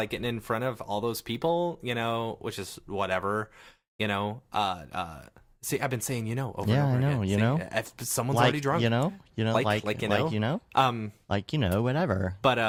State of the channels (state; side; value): identical; both; correlation 1.00